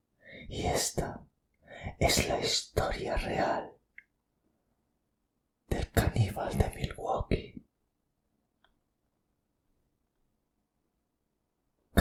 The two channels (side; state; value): both; identical; correlation 1.00